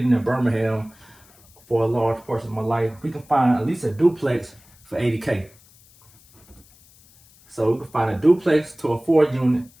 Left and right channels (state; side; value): noise; left; hiss, 28 dB below the sound